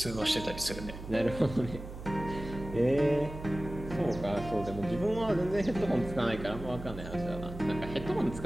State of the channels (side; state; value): right; noise; hum, 11 dB below the sound